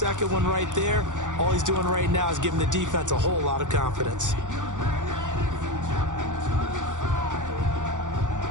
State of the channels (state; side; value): late; left; 0.86 ms